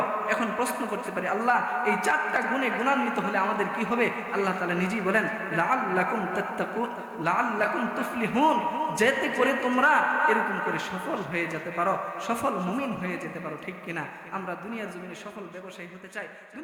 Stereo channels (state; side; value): identical; both; correlation 1.00